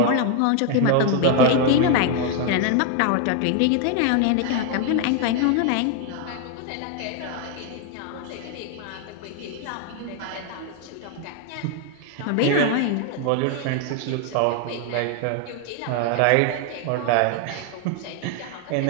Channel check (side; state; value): both; different; correlation 0.01